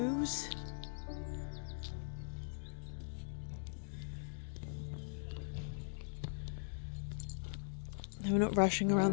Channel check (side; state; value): right; silent; digital silence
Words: We're not rushing around